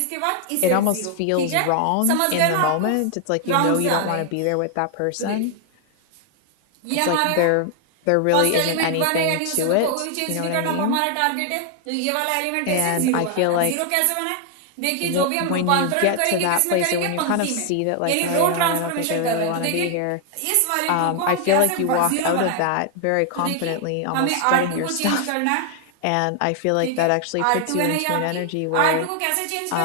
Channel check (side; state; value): both; different; correlation 0.00